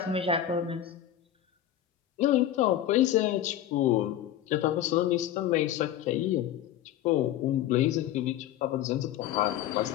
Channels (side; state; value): right; quieter; 11.6 dB